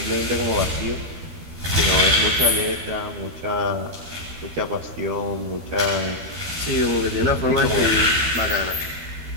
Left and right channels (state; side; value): late; left; 13 ms